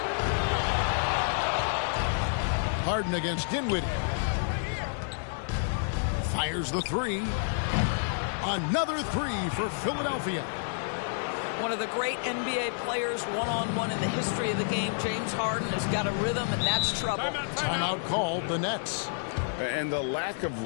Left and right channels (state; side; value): silent; right; 58 dB below the other